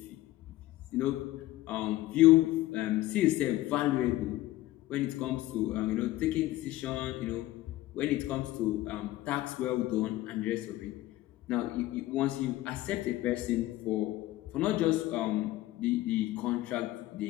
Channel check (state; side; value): quieter; right; 16.5 dB